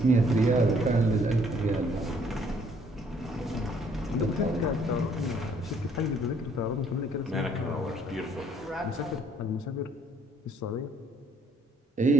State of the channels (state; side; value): normal; both; correlation 0.63